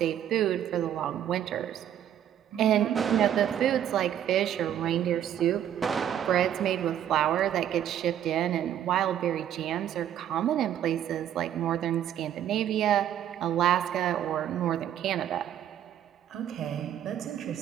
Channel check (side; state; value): left; quieter; 10.4 dB